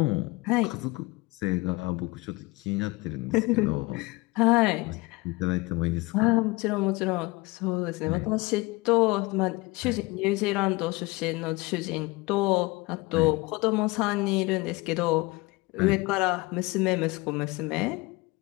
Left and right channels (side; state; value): right; quieter; 23.4 dB